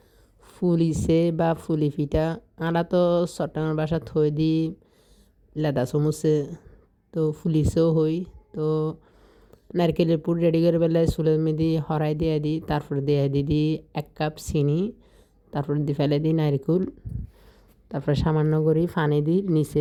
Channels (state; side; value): identical; both; correlation 1.00